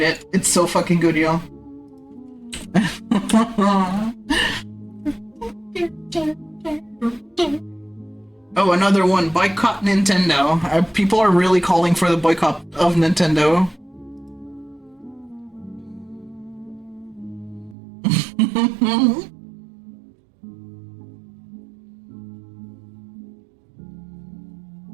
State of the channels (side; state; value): left; drops out; at 17.8 s